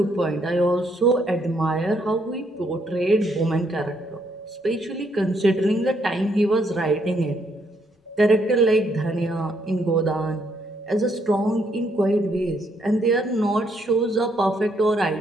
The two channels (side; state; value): both; normal; correlation 0.73